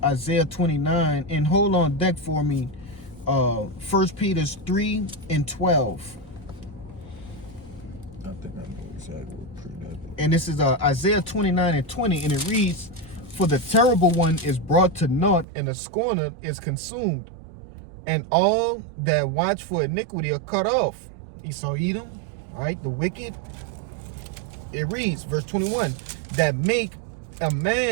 29. And hold on deck for me. 1 Peter 3 and 12. I think I know exactly what pre that. And this is Isaiah 29 and 20. And it reads, for the terrible one is brought to naught, and the scorner is consumed. And all that watch for iniquity are cut off. Esau, Edom. All right, the wicked. It reads, verse 21, that make a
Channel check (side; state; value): left; drops out; at 15.5 s